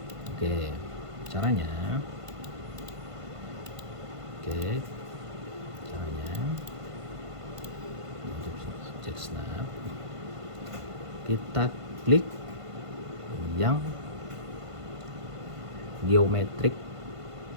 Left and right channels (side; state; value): left; late; 1.5 ms